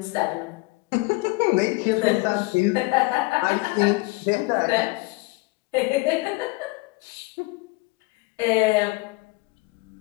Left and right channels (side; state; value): right; quieter; 24.0 dB